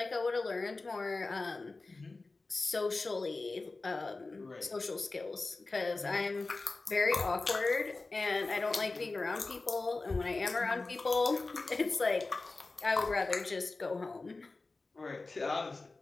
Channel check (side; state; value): right; quieter; 3.5 dB